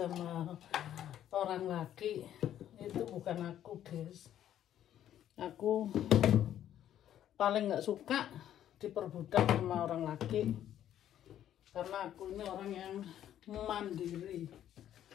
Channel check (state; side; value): quieter; right; 11.1 dB